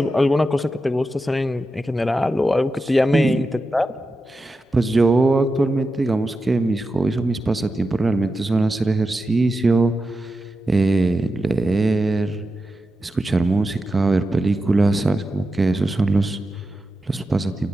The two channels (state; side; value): normal; both; correlation 0.90